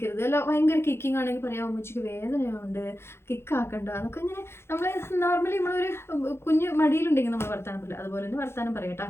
അല്ല ഭയങ്കര കിക്കിങ് ആണെങ്കിൽ പറയാം ഉമ്മച്ചിക്ക് വേദനയുണ്ട്, കിക്കാക്കണ്ട എന്നൊക്കെ ഇങ്ങനെ നമ്മൾ നോർമലി നമ്മളൊരു കുഞ്ഞ് മടിയിലുണ്ടെങ്കിൽ നമ്മൾ വർത്താനം പറയില്ല, അതുപോലെ തന്നെ വർത്താനം പറയട്ടോ.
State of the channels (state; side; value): late; right; 0.12 ms